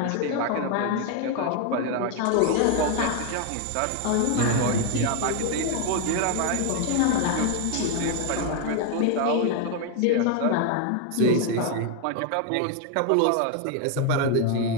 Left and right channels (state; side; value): different; both; correlation 0.01